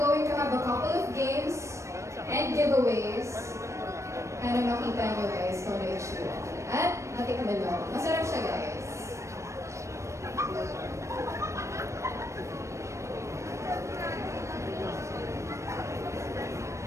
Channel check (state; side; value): late; left; 0.14 ms